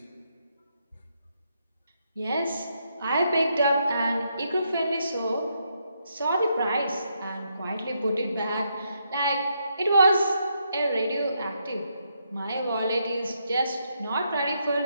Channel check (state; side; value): inverted; both; correlation -0.78